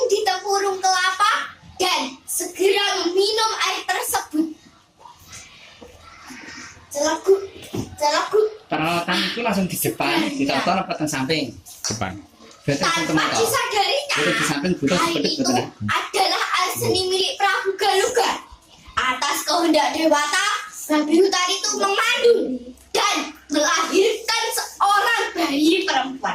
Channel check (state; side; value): identical; both; correlation 1.00